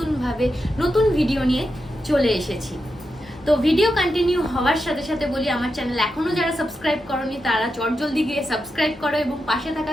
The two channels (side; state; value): both; normal; correlation 0.87